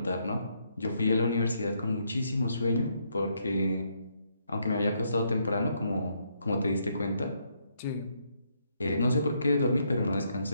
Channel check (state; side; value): inverted; both; correlation -0.75